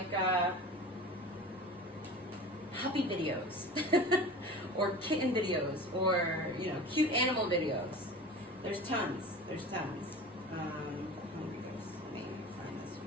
puppy videos or kitten videos or, cute animal videos. There's tons. The Hungry Ghost. Let me find this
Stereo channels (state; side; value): normal; both; correlation 0.35